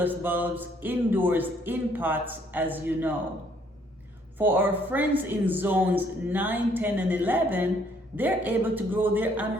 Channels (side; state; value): both; normal; correlation 0.65